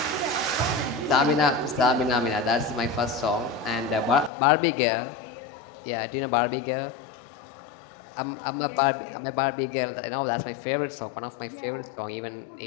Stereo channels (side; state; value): right; drops out; at 4.3 s